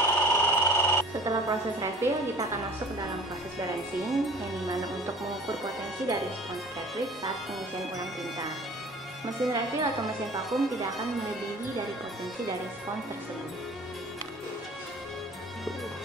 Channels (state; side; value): normal; both; correlation 0.46